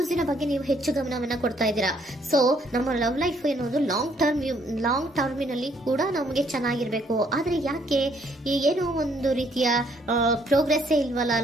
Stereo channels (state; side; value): normal; both; correlation 0.67